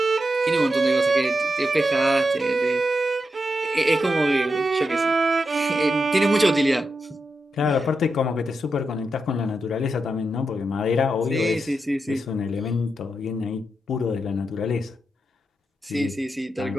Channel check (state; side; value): normal; both; correlation 0.87